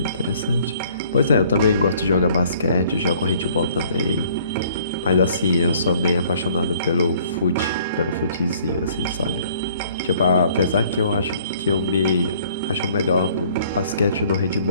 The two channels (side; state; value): both; inverted; correlation -0.58